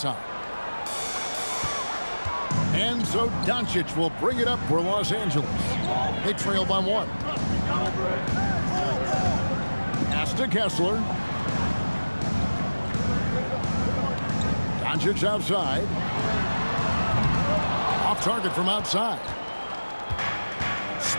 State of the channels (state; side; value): inverted; both; correlation -1.00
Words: And so Doncic will bring it up for Los Angeles. They trail by 1. Pass to Kessler. Doncic outside. Off target from outside.